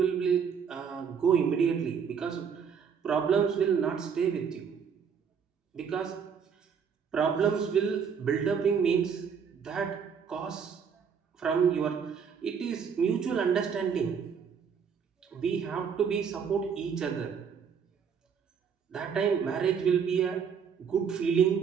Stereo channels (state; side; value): quieter; left; 6.8 dB